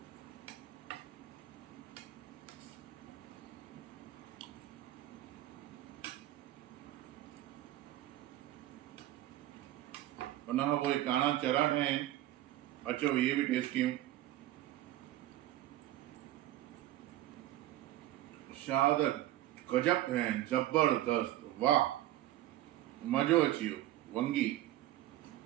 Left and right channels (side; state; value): left; quieter; 14.6 dB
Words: उन खां पोइ काणा चरा ठाहिया आहिनि, अचो इहे बि टेस्ट कयूं। शाद गजब ठाहिया आहिनि, जबरदस्त, वाह, मज़ो अची वियो, वंगी।